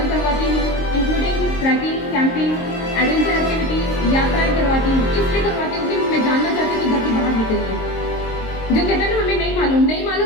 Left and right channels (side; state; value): right; late; 22 ms